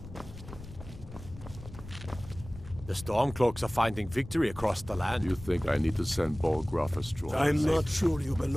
The Stormcloaks are finding victory across the land. You think I need to send 𝘼𝙗𝙘𝙘𝙗 a strong? I'm not sure you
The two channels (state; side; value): noise; left; rumble, 15 dB below the sound